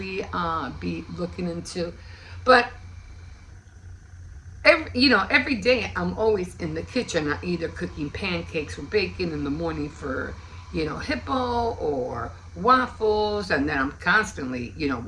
be looking into. But, every day I'm always in the kitchen, either cooking pancakes or bacon in the morning for, hippo or waffles, and then I'm constantly,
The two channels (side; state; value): both; identical; correlation 1.00